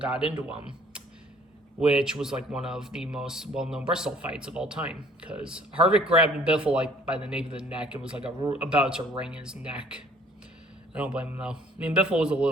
into him, which was like one of the most well-known Bristol fights of all time, because Harvick grabbed Biffle like by the nape of the neck and was like about to wring his neck. I don't blame him, though. I mean, Biffle was a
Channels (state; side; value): normal; both; correlation 0.56